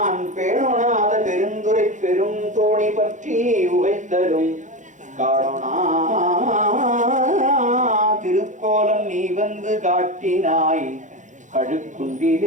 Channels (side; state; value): left; late; 0.36 ms